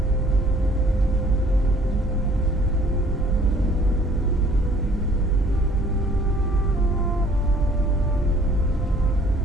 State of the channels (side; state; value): both; normal; correlation 0.57